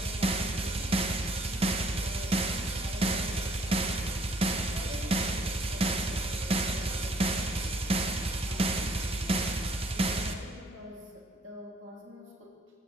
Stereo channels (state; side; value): normal; both; correlation 0.62